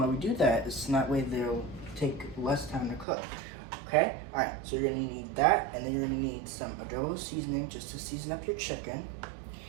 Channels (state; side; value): drops out; left; at 3.1 s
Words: we do that is so that way they'll take less time to cook. Okay, all right, so you're gonna need that, and then you're gonna need some adobo seasoning just to season up your chicken.